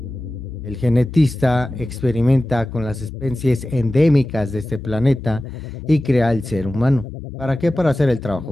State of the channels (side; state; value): both; normal; correlation 0.95